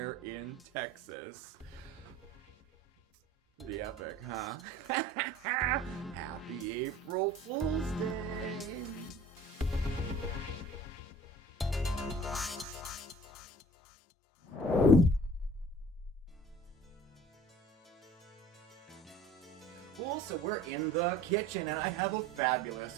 in Texas. Pretty epic, huh? Happy April Fool's Day! Well, so we're in the kitchen and I have a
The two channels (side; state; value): both; normal; correlation 0.47